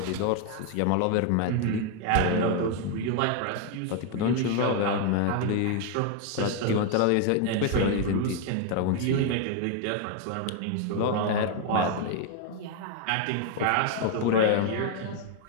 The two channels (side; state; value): both; different; correlation 0.01